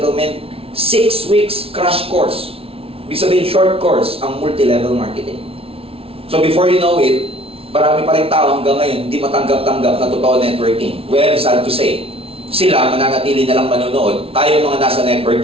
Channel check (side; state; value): left; late; 0.27 ms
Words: 6 weeks crash course. Ibig sabihin, short course ang multi-level marketing. So before you know it, marami pa rin tao hanggang ngayon hindi matanggap-tanggap na totoo networking. Well, sad to say, sila mananatili na lang manonood, tayo mga nasa